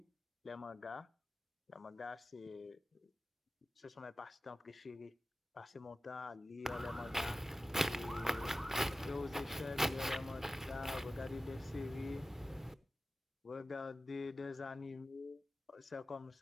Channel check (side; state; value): both; normal; correlation 0.95